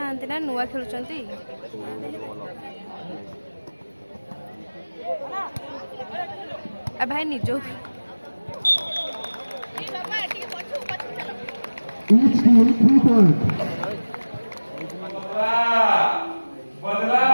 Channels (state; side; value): inverted; both; correlation -1.00